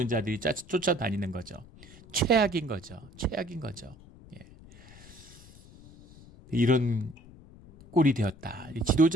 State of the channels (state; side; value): noise; left; rumble, 21 dB below the sound